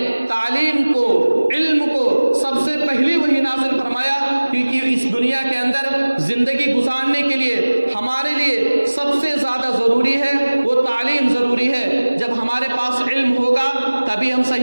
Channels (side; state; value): both; inverted; correlation -1.00